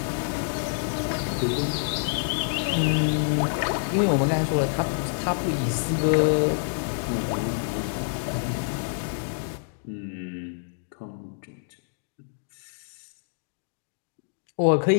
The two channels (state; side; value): silent; right; digital silence